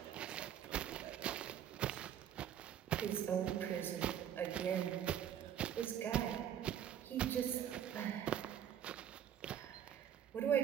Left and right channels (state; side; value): quieter; left; 9.7 dB